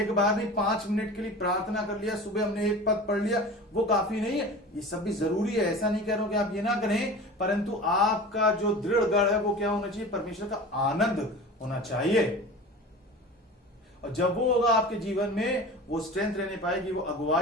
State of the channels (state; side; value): normal; both; correlation 0.35